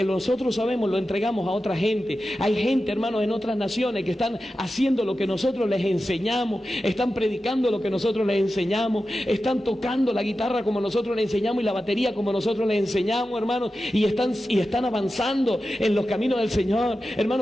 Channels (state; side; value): normal; both; correlation 0.92